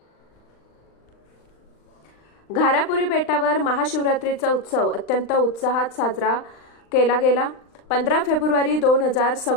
घारापुरी बेटावर महाशिवरात्रीचा उत्सव अत्यंत उत्साहात साजरा केला गेला। 15 फेब्रुवारी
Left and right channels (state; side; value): late; right; 39 ms